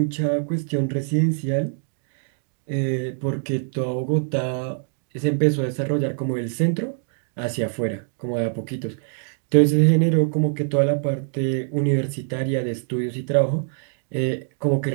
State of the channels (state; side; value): silent; left; digital silence